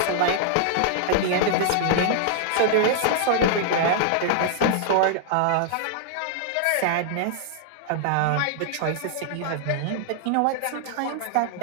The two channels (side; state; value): both; different; correlation -0.01